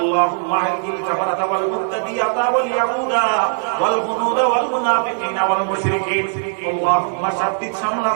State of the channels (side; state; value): left; silent; digital silence